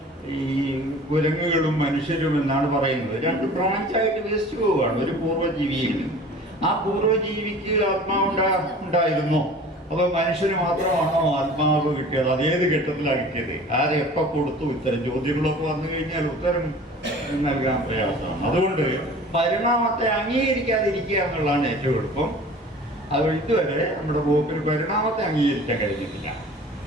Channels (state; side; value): normal; both; correlation 0.43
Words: ഈ കുരങ്ങുകളും മനുഷ്യരും എന്നാണ് പറയുന്നത്. 2 ബ്രാഞ്ചായിട്ട് വികസിച്ചു പോവുകയാണ് ഒരു പൂർവ്വജീവിയിൽ നിന്ന്. ആ പൂർവ്വജീവിക്ക് ആത്മാവ് ഉണ്ടായിരുന്നോ? അപ്പോൾ മനുഷ്യന് മാത്രമാണോ ആത്മാവ് കിട്ടിയത്? അതേത് ഘട്ടത്തിലാണ് കിട്ടിയത്? ആരെ എപ്പോൾ കൊടുത്തു? ഇത്തരം ചോദ്യങ്ങളൊക്കെ വന്നു കഴിഞ്ഞാൽ ഉത്തരം നൽകാൻ പ്രയാസമാണ്. അതുകൊണ്ട് പരിണാമത്തെ അംഗീകരിക്കാതിരിക്കുക എന്നുള്ളതാണ് ഏറ്റവും എളുപ്പം. അത് ഇതുവരെ നമ്മുടെ പോപ്പിന് പരിണാമത്തെ അംഗീകരിക്കാൻ കഴിഞ്ഞിട്ടില്ല.